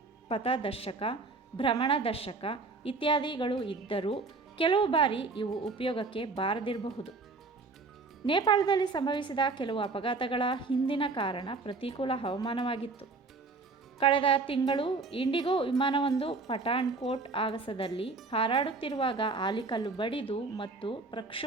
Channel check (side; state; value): left; quieter; 3.8 dB